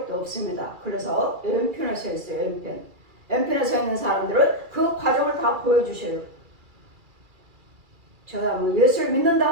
없습니다. 그래서 왼편에 서 있어요. 왼편. 왼편에 서 있는 사람들은 그 과정을 다 보여주셔요. 저 사람은 예수를 믿는다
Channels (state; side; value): late; left; 2.3 ms